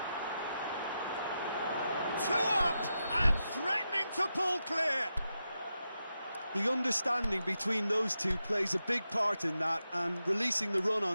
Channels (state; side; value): inverted; both; correlation -0.88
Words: 2 up and threatening to pull clear. The understanding between those two plays a big part in that, and releasing the run